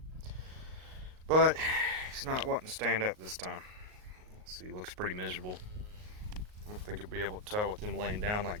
but he's not wanting to stand up this time. So he looks pretty miserable. I don't think you'll be able to tell with him laying down like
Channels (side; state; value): left; late; 38 ms